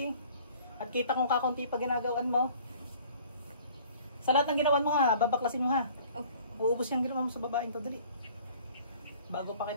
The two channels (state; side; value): inverted; both; correlation -0.51